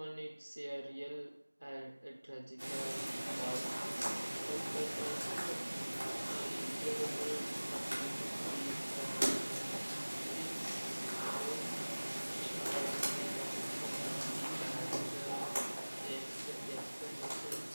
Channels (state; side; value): inverted; both; correlation -1.00